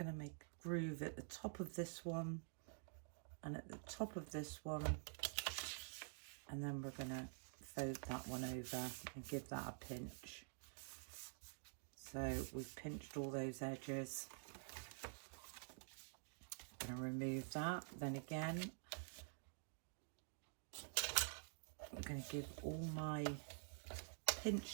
to make a groove at the top of this one and at the top of this one, and then we're going to fold that one over and give that a pinch. So we've pinched all those edges. I'm going to remove that. Then again, I'm going to give all my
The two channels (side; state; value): left; silent; digital silence